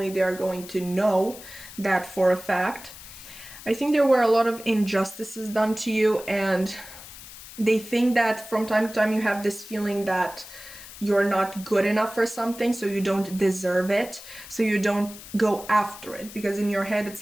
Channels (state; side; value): noise; left; hiss, 16 dB below the sound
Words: they are going to know that for a fact. I think there were a lot of injustices done to you, and they think that from time to time you have this feeling that you're not good enough for something, so you don't deserve it, so you don't go after it. Because in your head, it's